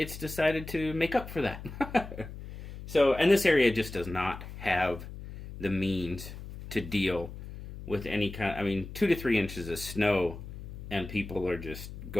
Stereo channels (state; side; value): noise; left; hum, 12 dB below the sound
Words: decided to make up for that. So, and this area just does not have the means to deal with any kind, 2 to 3 inches of snow, and people are just